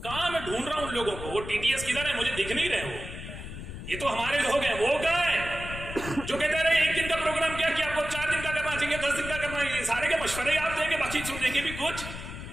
کہاں میں ڈھونڈ رہا ہوں ان لوگوں کو، وہ ٹی ٹی ایس کدھر ہے، مجھے دکھ نہیں رہے. وہ یہ تو ہمارے لوگ ہیں، وہ کہاں ہے جو کہتے رہے ایک دن کا پروگرام کیا کہ آپ کو 4 دن کا کرنا چاہیے، 10 دن کا کرنا ہے. یہ سارے کے مشورے آپ دیں گے، باقی سنیں گے بھی کچھ.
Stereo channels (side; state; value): left; noise; rumble, 10 dB below the sound